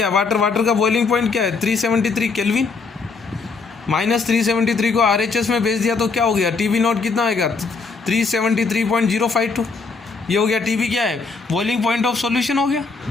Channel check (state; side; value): quieter; right; 4.5 dB